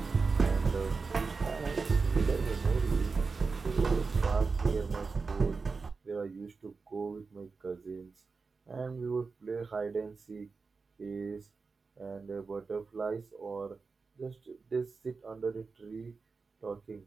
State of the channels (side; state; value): left; quieter; 4.5 dB